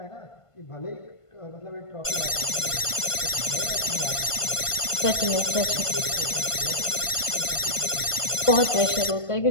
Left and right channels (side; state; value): right; late; 1.5 ms